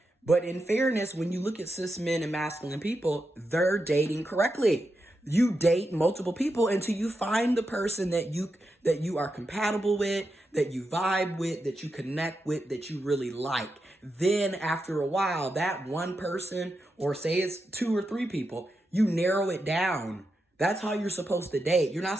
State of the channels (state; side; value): normal; both; correlation 0.87